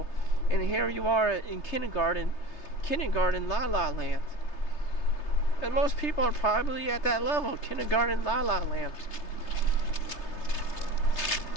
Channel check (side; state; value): right; late; 3.3 ms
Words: and here you are in kindergarten la la land. And most people are probably at that level, kindergarten la la land.